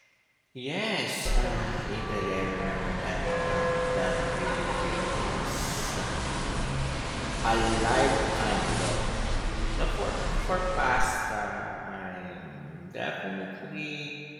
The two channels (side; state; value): both; identical; correlation 1.00